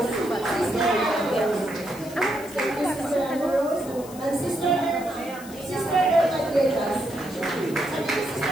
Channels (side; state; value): left; noise; hiss, 17 dB below the sound